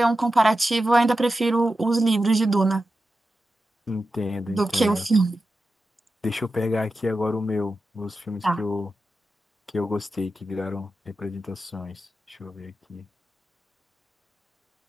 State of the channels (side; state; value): both; normal; correlation 0.92